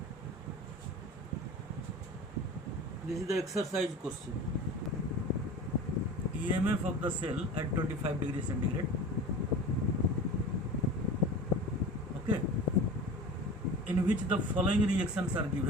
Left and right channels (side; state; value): both; normal; correlation 0.35